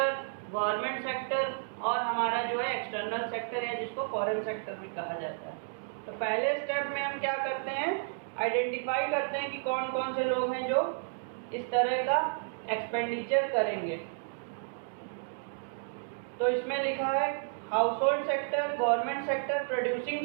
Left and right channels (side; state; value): left; silent; digital silence